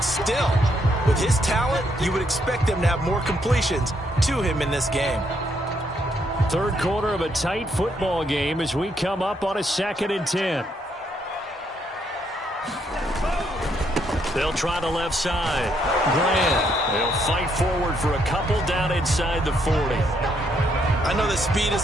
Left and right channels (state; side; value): normal; both; correlation 0.74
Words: still, with his talent, you would expect them to have more completions to him in this game. Third quarter of a tight football game as we come up on a 2nd and 10. They'll try the left side. Graham. They'll fight forward for a couple down inside the 40. I know that speed is